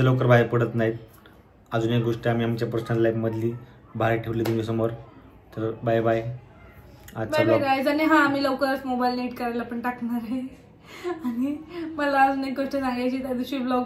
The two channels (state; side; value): identical; both; correlation 1.00